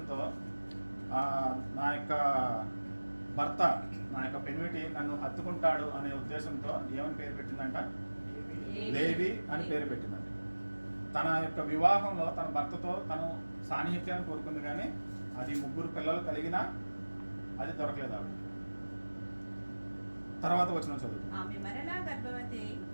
నా యొక్క భర్త, నా యొక్క పెనిమిటి నన్ను హత్తుకుంటాడు అనే ఉద్దేశంతో ఏమని పేరు పెట్టిందంట? లేవి అని పేరు పెట్టిందంట. తన యొక్క వివాహంలో తన భర్తతో తను సాన్నిహిత్యాన్ని కోరుకుంది, కానీ అది ముగ్గురు పిల్లలు కలిగినా అది దొరకలేదు ఆవిడ. తర్వాత వచ్చిన చదువు.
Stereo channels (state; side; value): inverted; both; correlation -1.00